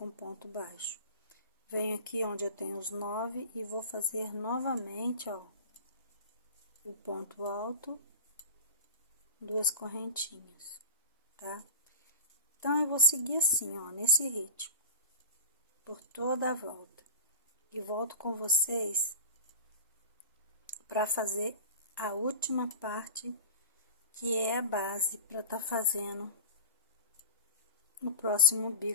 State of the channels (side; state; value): both; inverted; correlation -0.30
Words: ponto baixo. Venho aqui onde eu tenho os 9 e vou fazer novamente, ó, o ponto alto, 2 correntinhas, tá? Então, eu vou seguir assim, ó, nesse ritmo, por toda a volta. E volto com vocês para fazer a última parte, que é a base para tá fazendo no próximo